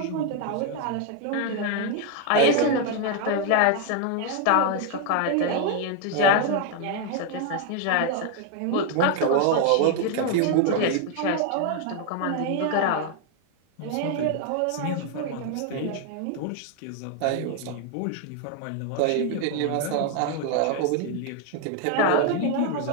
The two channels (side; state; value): both; different; correlation 0.00